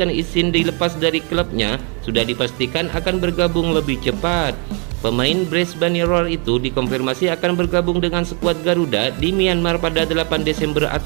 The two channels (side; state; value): left; quieter; 35.6 dB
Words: izin dilepas dari klubnya sudah dipastikan akan bergabung lebih cepat. Pemain Brisbane Roar itu dikonfirmasi akan bergabung dengan skuad Garuda di Myanmar pada 8 Desember